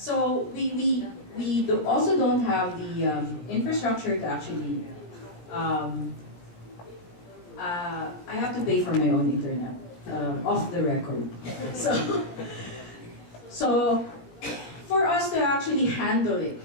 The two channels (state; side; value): late; right; 17 ms